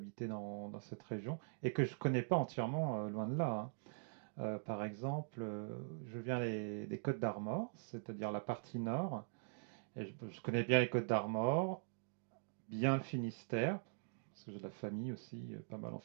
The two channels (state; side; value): silent; left; digital silence